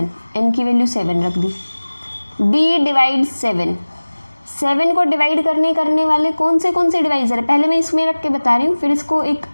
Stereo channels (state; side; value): inverted; both; correlation -1.00